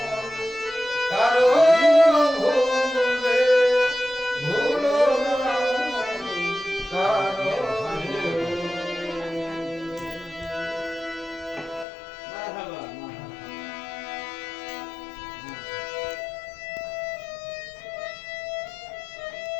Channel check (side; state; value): right; drops out; at 11.9 s